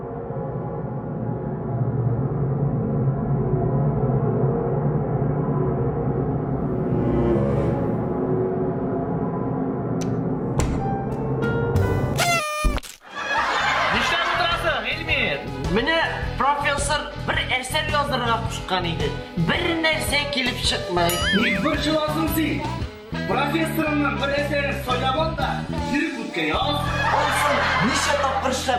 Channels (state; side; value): identical; both; correlation 1.00